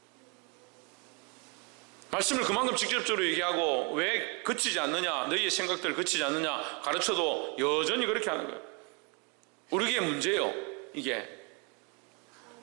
말씀을 그만큼 직접적으로 얘기하고 왜 그치지 않느냐, 너희의 생각들 그치지 않느냐 가르쳐도 여전히 그렇게 하는 거예요. 우리에게 문제예요. 이게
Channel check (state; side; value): quieter; left; 33.2 dB